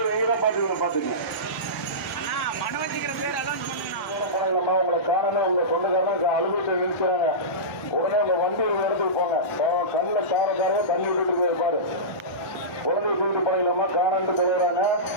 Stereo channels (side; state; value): both; normal; correlation -0.19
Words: நீங்க தான் பாத்துக்கணும். உங்களை காரணம் உங்க சொந்தக்காரங்க அலுவலகத்தை நிறுத்துறாங்க. உடனே உங்க வண்டி ஒரு இடத்துக்கு போங்க. கண்ணில் காரக்காரங்க தண்ணி விட்டுட்டு பாரு. குழந்தை தூக்கிட்டு போனீங்களாமா காணாண்டு தருவாங்க.